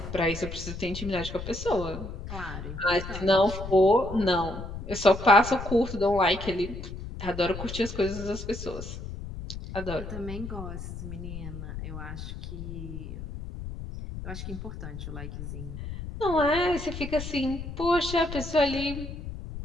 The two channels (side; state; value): left; noise; rumble, 9 dB below the sound